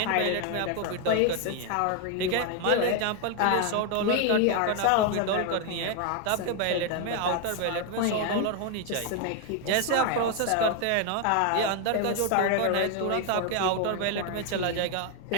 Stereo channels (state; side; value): different; both; correlation 0.01